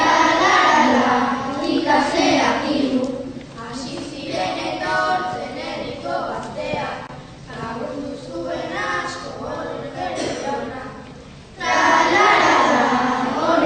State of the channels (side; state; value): both; identical; correlation 1.00